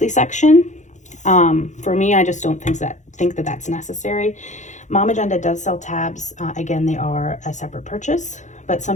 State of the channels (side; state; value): right; late; 0.35 ms